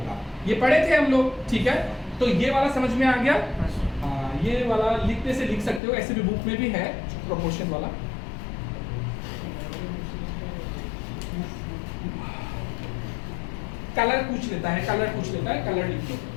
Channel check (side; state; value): right; drops out; at 5.8 s